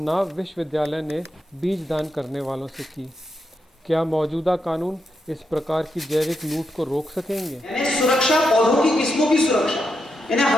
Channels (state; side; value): normal; both; correlation 0.84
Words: विश्वविद्यालय ने बीज दान करने वालों से की। क्या मौजूदा कानून इस प्रकार की जैविक लूट को रोक सकेंगे? सुरक्षा, पौधों की किस्मों की सुरक्षा, यानी